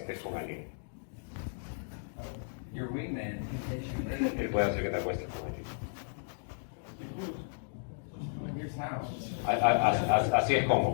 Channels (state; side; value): silent; right; digital silence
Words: con alguien. Your wingman can get you laid. Él puede hacer que te acuestes con alguien. Here's how. Así es